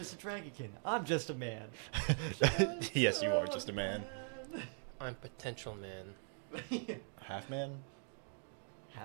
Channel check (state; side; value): silent; left; 50 dB below the other